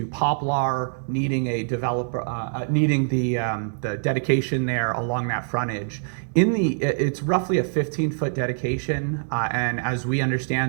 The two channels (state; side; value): silent; left; digital silence